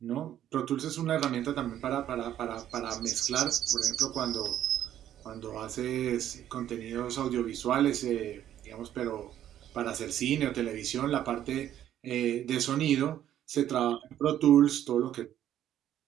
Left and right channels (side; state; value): left; quieter; 11.4 dB